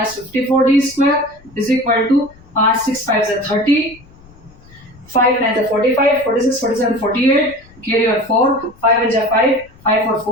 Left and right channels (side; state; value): left; noise; rumble, 25 dB below the sound